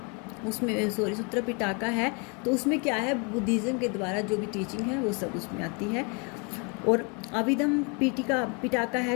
उसमें, सूत्र पिटाका है, तो उसमें क्या है, बुद्धिज़्म के द्वारा जो भी टीचिंग है वो सब उसमें आती है। और अभिधम पिटाका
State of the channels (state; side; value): quieter; right; 33.4 dB